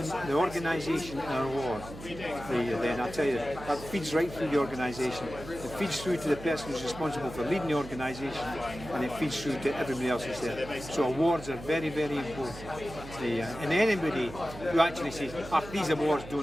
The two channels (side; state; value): right; noise; hum, 13 dB below the sound